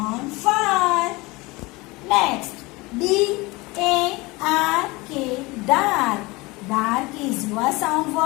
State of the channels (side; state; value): right; quieter; 23.2 dB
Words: fur. Next, D A R K, dark. Dark is your sound